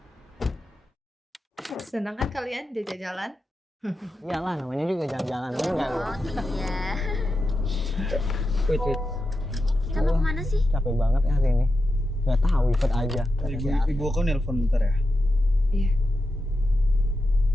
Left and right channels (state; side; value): normal; both; correlation 0.89